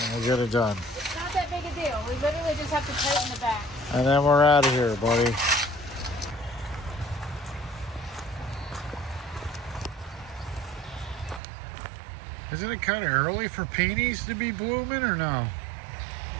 and we'll get it done. it's not that big a deal. We literally just have to tighten the back. And then we're out of here, buddy. Isn't it kind of early for peonies to be blooming, or no?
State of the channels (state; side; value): drops out; left; at 11.4 s